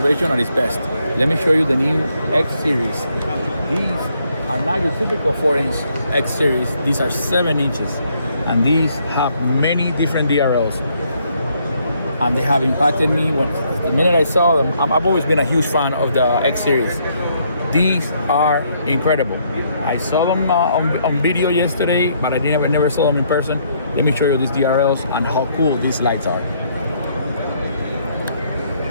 at its best. Let me show you the new X Series. These are not your typical 4-inch X Series. These are 7 inches, and these have many different DRLs. And they have impacted me the minute I saw them. I've always been a huge fan of the X Series. These are incredible. I saw them on video yesterday, but I never saw them in person. Let me show you these DRLs and how cool these lights are.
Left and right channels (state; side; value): inverted; both; correlation -0.71